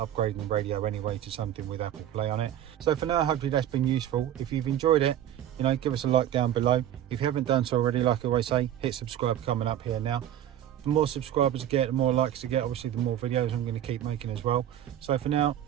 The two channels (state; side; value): quieter; left; 11.3 dB